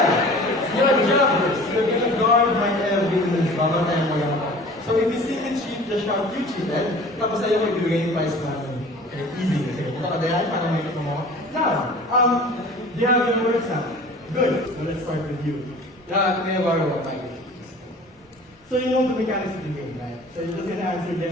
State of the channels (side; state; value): both; normal; correlation 0.44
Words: your job is you're gonna guard my evidence. Babatayan mo lang ako. So if you see me cheat, just shout, you cheated. Tapos sa'yo ko ibigay yung price natin. Okay, easy. Okay, punta ka dahil para may mo. Now, do you have your words now? Good. So let's start with you. Yeah, may borrow my So you know the mechanics of the game, right? So you're just gonna answer